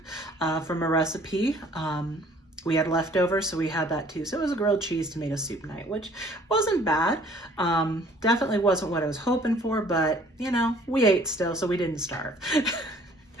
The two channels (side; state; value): both; normal; correlation 0.56